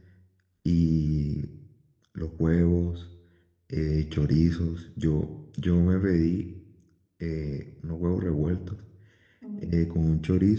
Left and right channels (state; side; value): identical; both; correlation 1.00